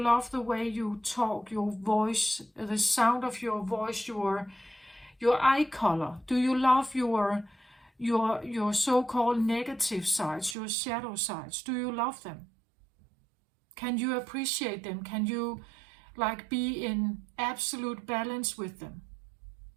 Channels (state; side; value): drops out; left; at 10.6 s